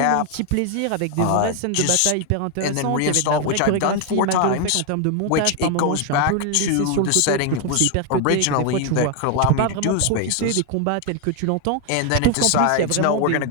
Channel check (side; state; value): both; different; correlation 0.01